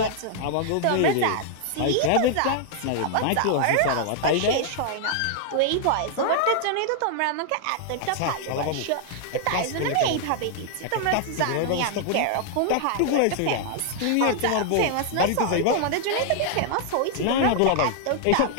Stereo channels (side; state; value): both; different; correlation -0.01